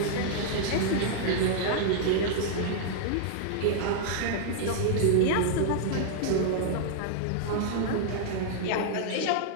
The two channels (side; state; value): both; different; correlation -0.01